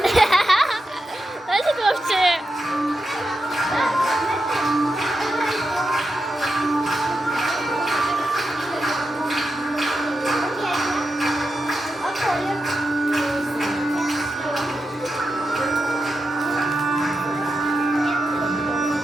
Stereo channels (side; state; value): both; normal; correlation 0.88